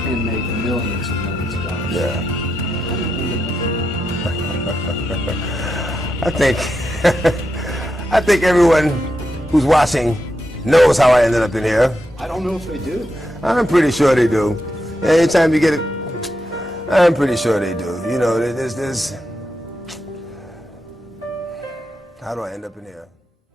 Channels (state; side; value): normal; both; correlation 0.85